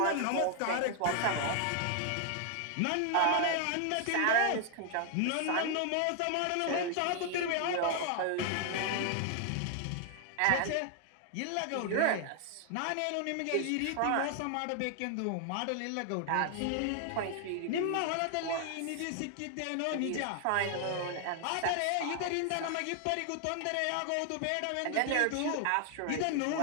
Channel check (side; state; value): both; different; correlation 0.00